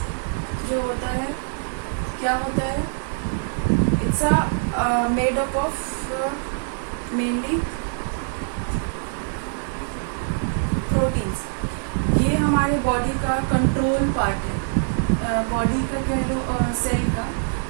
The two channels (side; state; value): left; silent; 63 dB below the other